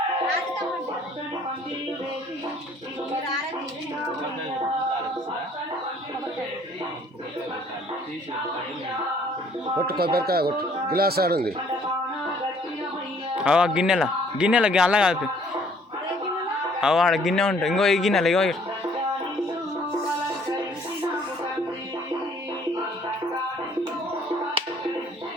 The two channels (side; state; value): both; normal; correlation 0.60